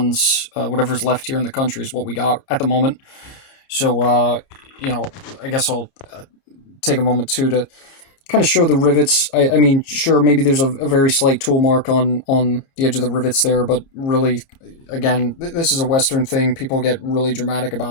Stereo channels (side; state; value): right; late; 30 ms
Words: Whatever's left here in the country is what we got at the moment. So I guess I'll take a moment too to kind of show the rivets. I mean, sure, maybe there's a very slight tool mark on the edge of the rivets there, but really, again, this is a Western thing. People get really dramatic